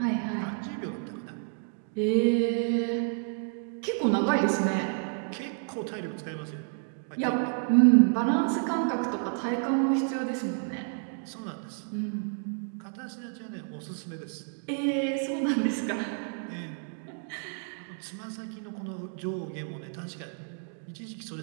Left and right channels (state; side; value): silent; left; 58 dB below the other